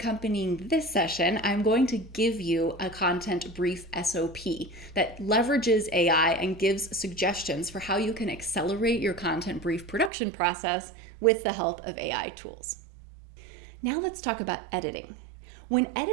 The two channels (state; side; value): drops out; left; at 10.1 s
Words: this session, I'm going to give you a content brief SOP that leverages AI and gives suggestions for how you can accelerate your content brief production process with the help of AI tools. Now let's talk about editing. When